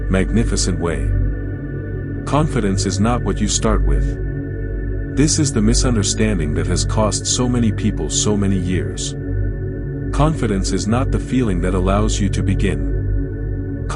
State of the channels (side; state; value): both; identical; correlation 1.00